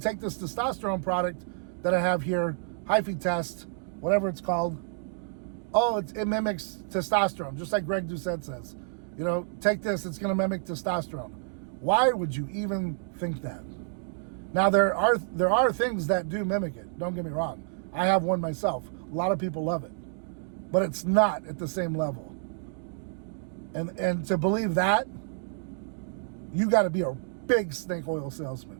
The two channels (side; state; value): left; silent; digital silence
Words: this testosterone product that I have here, hyphae test, whatever it's called, oh, it mimics testosterone, just like Greg Doucette says. You know, take this, it's going to mimic testosterone. Why would you even think that? Now, there are things that do mimic it. Don't get me wrong. I have one myself. A lot of people love it. But it's not at the same level. And to believe that, you got to be a big snake oil